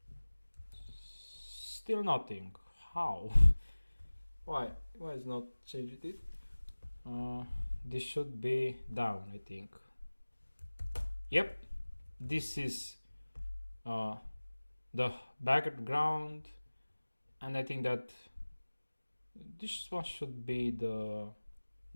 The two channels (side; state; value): both; inverted; correlation -1.00